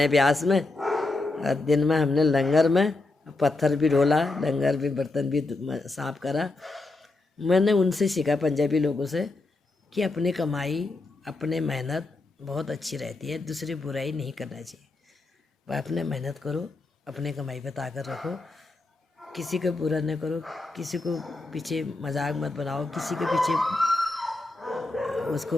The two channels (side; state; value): right; quieter; 3.2 dB